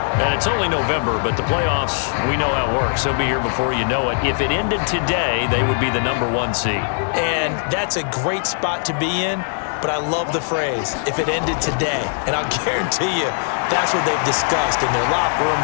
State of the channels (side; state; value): right; silent; digital silence